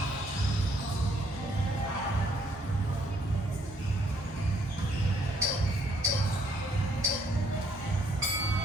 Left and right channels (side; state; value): both; normal; correlation 0.67